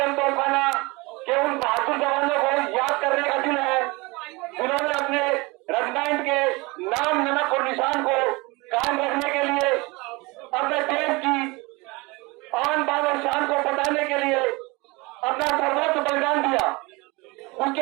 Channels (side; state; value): left; quieter; 24.9 dB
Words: तोपखाना के उन बहादुर जवानों को याद करने का दिन है जिन्होंने अपने रेजिमेंट के नाम, नमक और निशान को कायम रखने के लिए अपने देश की आन बान और शान को बचाने के लिए अपना सर्वोच्च बलिदान दिया।